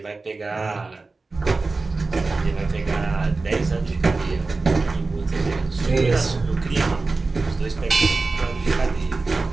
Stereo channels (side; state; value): left; quieter; 3.7 dB